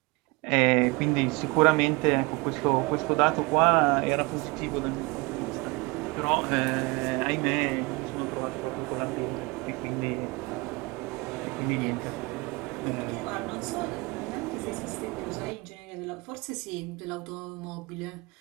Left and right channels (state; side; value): quieter; left; 25.5 dB